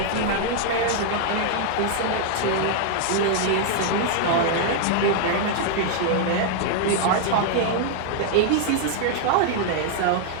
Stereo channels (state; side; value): different; both; correlation 0.00